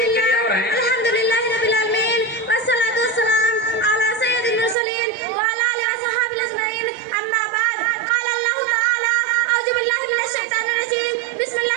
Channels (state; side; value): drops out; left; at 4.8 s